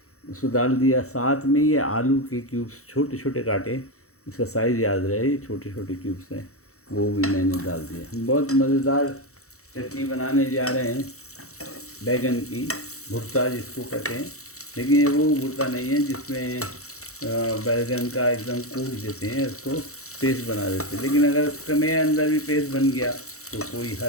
उसको डाल दिया। साथ में ये आलू के क्यूब्स छोटे छोटे काटे, इसका साइज़ याद रहे, ये छोटे छोटे क्यूब्स हैं, वो भी मैंने डाल दिया। बहुत मज़ेदार चटनी बनाने जा रहे हैं बैगन की, भुर्ता जिसको कहते हैं, लेकिन ये वो भुर्ता नहीं है जिसमें बैगन का एकदम कूट देते हैं, उसको पेस्ट बना देते हैं। लेकिन अगर इसमें अंदर भी पेस्ट बन गया तो कोई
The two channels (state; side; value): late; right; 0.64 ms